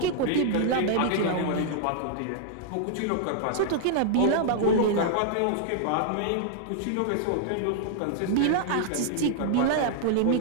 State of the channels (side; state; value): both; different; correlation -0.01